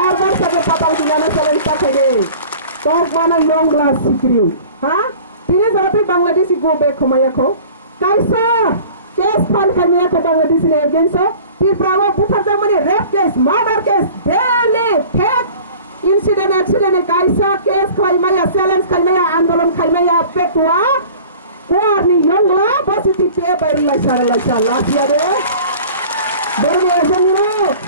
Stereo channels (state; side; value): inverted; both; correlation -0.44